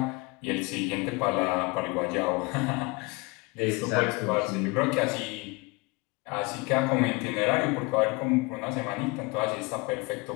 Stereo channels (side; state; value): right; quieter; 26.2 dB